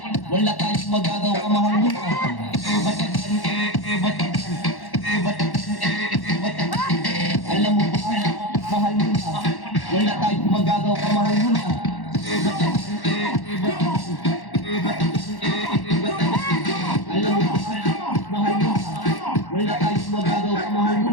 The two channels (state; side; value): late; right; 1.1 ms